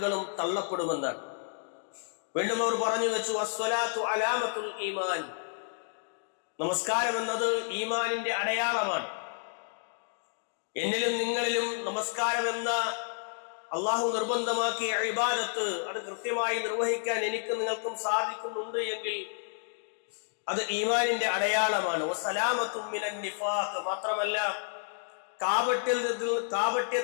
തള്ളപ്പെടുമെന്നാണ്. വീണ്ടും അവർ പറഞ്ഞു വെച്ചു, അസ്സലാത്തു അലാമത്തുൽ ഈമാൻ, നമസ്കാരം എന്നത് ഈമാനിന്റെ അടയാളമാണ്. എന്നിലും നിങ്ങളിലും നമസ്കാരം എന്ന അള്ളാഹു നിർബന്ധമാക്കിയ ഇബാദത്ത് അത് കൃത്യമായി നിർവഹിക്കാൻ എനിക്ക് നിങ്ങൾക്കും സാധിക്കുന്നുണ്ട് എങ്കിൽ അത് ഈമാനിന്റെ അടയാളമാണ്. വസലാമത്തും മിനൻ നിഫാഖ്, മാത്രമല്ല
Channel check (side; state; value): right; silent; digital silence